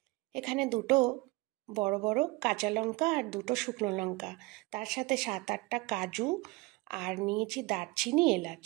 এখানে দুটো বড় বড় কাঁচা লঙ্কা আর দুটো শুকনো লঙ্কা, তার সাথে 7-8টা কাজু, আর নিয়েছি দারচিনি, এলাচ।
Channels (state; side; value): quieter; left; 23.8 dB